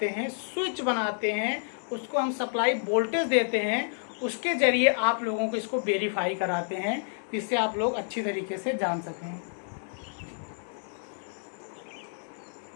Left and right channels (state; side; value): silent; right; digital silence